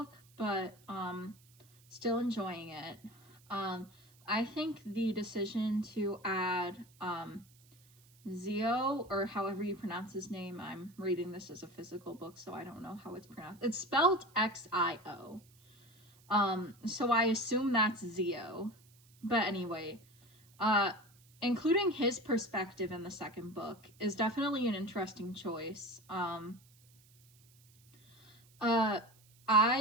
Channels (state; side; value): noise; right; hiss, 29 dB below the sound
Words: but still enjoying it. I think the decision to add Zio, or however you pronounce his name, I'm reading this as a physical book, so I don't know how it's pronounced. It's spelled Xio. So I assume that's Zio. But anyway, including his perspective in the second book is definitely an interesting choice.